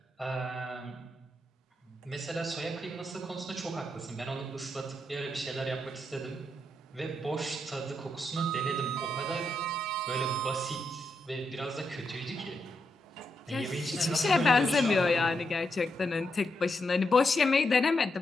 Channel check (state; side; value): normal; both; correlation 0.82